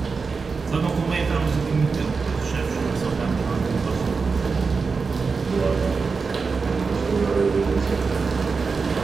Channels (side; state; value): left; quieter; 4.8 dB